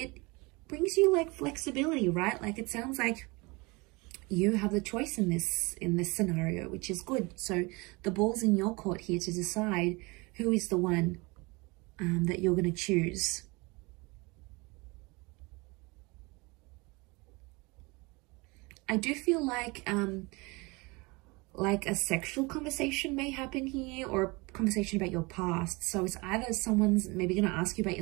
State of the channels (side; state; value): left; quieter; 25.9 dB